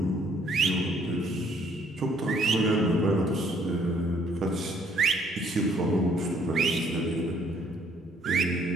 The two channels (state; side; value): normal; both; correlation 0.65